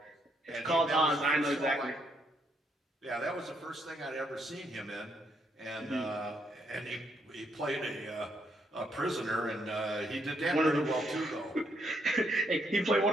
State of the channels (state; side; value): normal; both; correlation 0.75